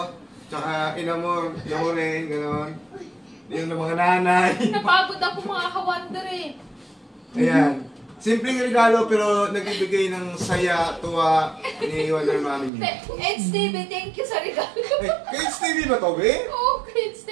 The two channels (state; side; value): drops out; left; at 12.7 s